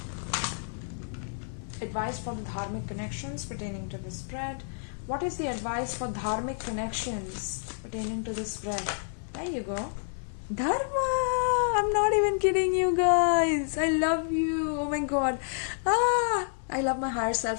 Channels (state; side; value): silent; right; 58 dB below the other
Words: Advice for the dharmic connections pertaining to the spread. What is the advice for dharmic connections pertaining to the spread? There you go. Dharma! I'm not even kidding you guys. I love you. Oh my god. I love my higher